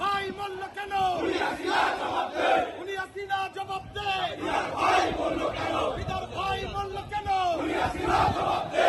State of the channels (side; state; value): both; identical; correlation 1.00